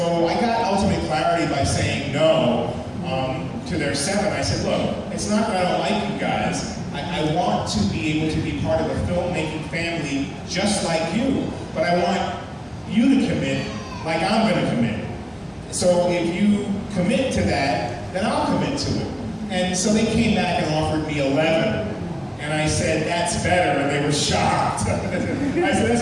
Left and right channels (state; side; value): identical; both; correlation 1.00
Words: I got ultimate clarity by saying no to their 7. I said, look, it's not that I don't like you guys. I want to be able to be part of a filmmaking family just like you, but I want you to commit like I'm going to commit. So if you commit to that, then I'll commit to it. And so they came back and offered me 11. And I said, that's better, and they were shocked. I said, that's